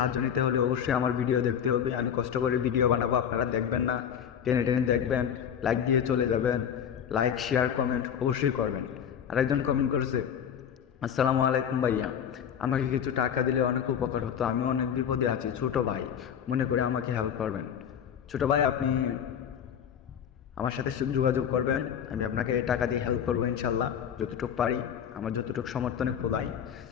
নিতে হলে অবশ্যই আমার ভিডিও দেখতে হবে। আমি কষ্ট করে ভিডিও বানাবো, আপনারা দেখবেন না, টেনে টেনে দেখবেন, লাইক দিয়ে চলে যাবেন। লাইক, শেয়ার, কমেন্ট অবশ্যই করবেন। আরেকজন কমেন্ট করেছে, আসসালামু আলাইকুম ভাইয়া, আমাকে কিছু টাকা দিলে অনেক উপকার হতো, আমি অনেক বিপদে আছি, ছোট ভাই মনে করে আমাকে হেল্প করবেন। ছোট ভাই, আপনি আমার সাথে যোগাযোগ করবেন, আমি আপনাকে টাকা দিয়ে হেল্প করবো ইনশাল্লাহ, যতটুকু পারি আমার যতটুকু সমর্থনে খোলাই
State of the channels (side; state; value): right; quieter; 8.5 dB